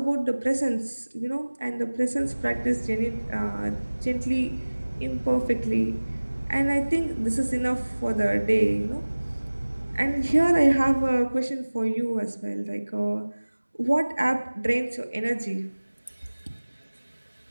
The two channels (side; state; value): both; inverted; correlation -1.00